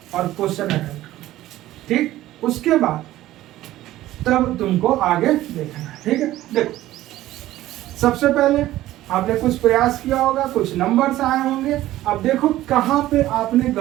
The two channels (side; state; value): left; quieter; 15.1 dB